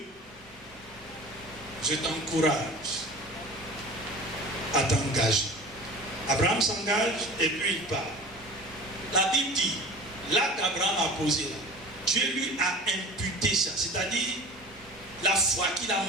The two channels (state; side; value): normal; both; correlation 0.39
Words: je t'encourage à t'engager. Abraham s'engage et puis il part. La Bible dit, là qu'Abraham a posé là, Dieu lui a imputé ça. C'est-à-dire, la foi qu'il a